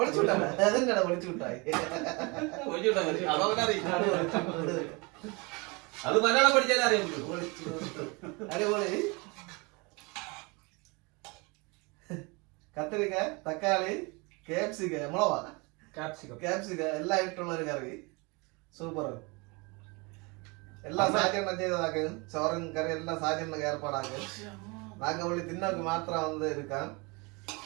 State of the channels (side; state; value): left; quieter; 28.2 dB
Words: അതെന്നാ ഒളിച്ചുവിട്ടായി അത് മലയാളം പഠിച്ചാലേ അറിയാൻ അടിപൊളി. കത്തിരിക്ക തക്കാളി ക്യാപ്സിക്ക എല്ലാം ഇട്ടുള്ള ഒരു കറി സൂപ്പർ. എല്ലാം സാജെണ്ണം ചെയ്തതാക്ക് ചോറും കറി എല്ലാം സാജെണ്ണ ഏർപ്പാടാക്ക്. നാങ്ക പുള്ളി തിന്നോക്ക് മാത്രം വന്ന് എടുക്കാം